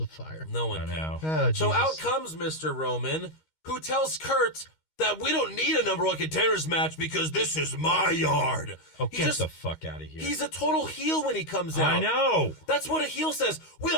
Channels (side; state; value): right; late; 13 ms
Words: of Fire. No one I can. know. Oh, So Jesus. out comes Mr. Roman, who tells Kurt that we don't need a number one contenders match because this is my yard. Oh, He get just- the fuck out of here. He's a total heel when he comes out. I know. That's what a heel says.